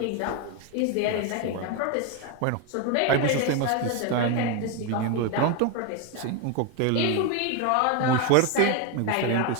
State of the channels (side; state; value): both; different; correlation 0.02